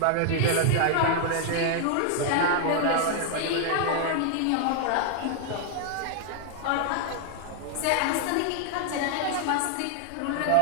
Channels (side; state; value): both; different; correlation 0.00